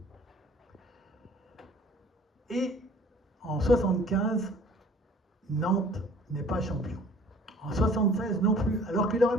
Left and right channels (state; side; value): normal; both; correlation 0.52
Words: Et en 75, Nantes n'est pas champion. En 76 non plus, alors qu'il aurait